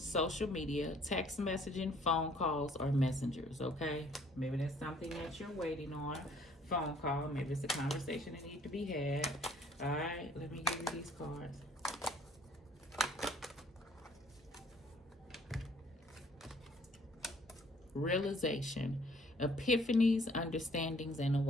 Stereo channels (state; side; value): normal; both; correlation 0.59